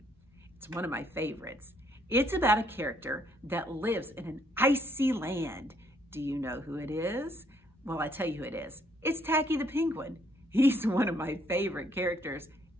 It's one of my favorites. It's about a character that lives in an icy land. Do you know who it is? Well, I tell you who it is. It's Tacky the Penguin. He's one of my favorite characters.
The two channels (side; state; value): both; normal; correlation 0.69